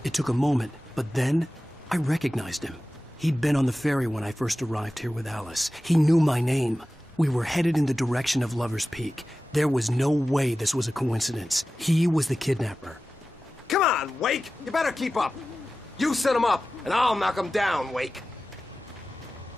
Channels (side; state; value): both; normal; correlation 0.95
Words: It took a moment, but then I recognized him. He'd been on the ferry when I first arrived here with Alice. He knew my name. We were headed in the direction of Lover's Peak. There was no way this was a coincidence. He was the kidnapper. Come on, Wake! You better keep up. You set him up, and I'll knock him down, Wake.